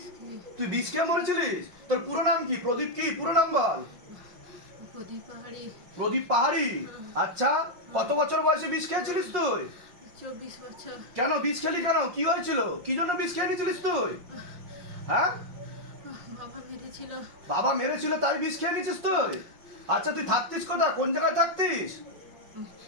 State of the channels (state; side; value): late; left; 5.6 ms